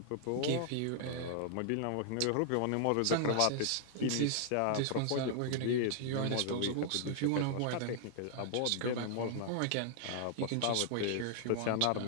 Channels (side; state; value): both; different; correlation 0.00